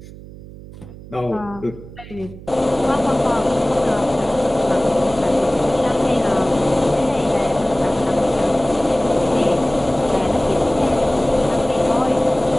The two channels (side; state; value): right; noise; hum, 16 dB below the sound